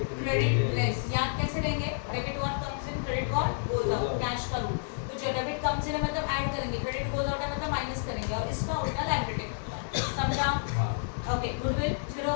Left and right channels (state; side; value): silent; right; digital silence